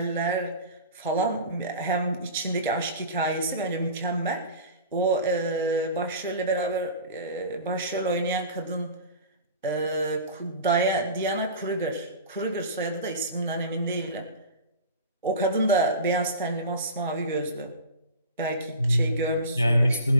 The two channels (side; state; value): both; inverted; correlation -0.35